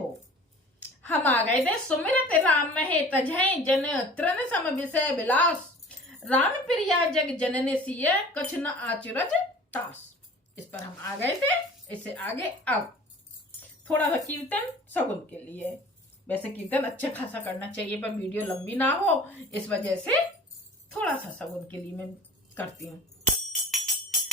हम आ गए थे सुमिरत राम महे तजय जन तृण सम विषय विलास, राम प्रिया जग जनने सिय कछ न आचरज तास। इस पर हम आ गए थे। इससे आगे अब थोड़ा सा कीर्तन सगुन के लिए। वैसे कीर्तन अच्छा खासा करना चाहिए पर वीडियो लंबी ना हो, इस वजह से थोड़ा सा सगुन के लिए मैं करती हूँ।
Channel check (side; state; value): both; normal; correlation 0.44